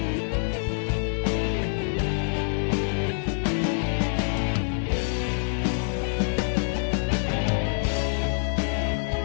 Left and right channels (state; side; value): silent; right; digital silence